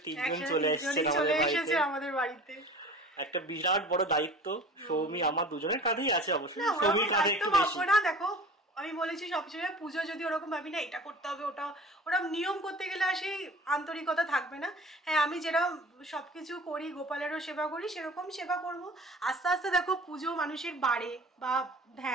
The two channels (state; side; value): normal; both; correlation 0.42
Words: তিনজন চলে এসেছে আমাদের বাড়িতে। একটা বিরাট বড় দায়িত্ব সৌমি আমার দুজনের কাঁধেই আছে, অবশ্যই সৌমির কাঁধে একটু বেশি। না দেখো আমি বলেছি সবসময় পুজো যদি ওরকম ভাবি না এটা করতে হবে ওটা, ওরা নিয়ম করতে গেলে আর সেই আন্তরিকতা থাকবে না। হ্যাঁ, আমি যেরকম সবকিছু করি, গোপালেরও সেবা করি, সেরকম সেবা করব। আস্তে আস্তে দেখো পুজো মানুষের বাড়ে বা